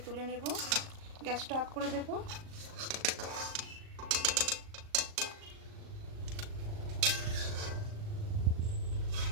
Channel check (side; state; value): left; late; 38 ms